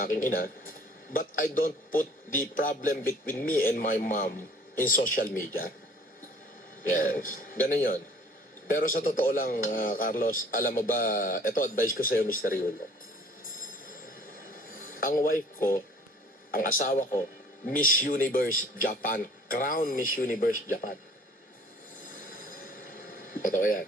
aking ina, but I don't put the problem between me and my mom in social media. Yes, ganun yun. Pero sa totoo lang, Carlos, alam mo ba, ito advice ko sa'yo, Mr. Yulo. Ang wife ko, ang asawa ko, Miss Universe Japan. Crown Miss Universe Japan. Totoo yan.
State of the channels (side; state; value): both; normal; correlation 0.53